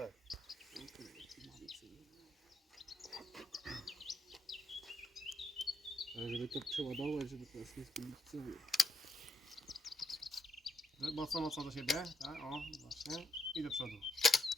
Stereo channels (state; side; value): normal; both; correlation 0.79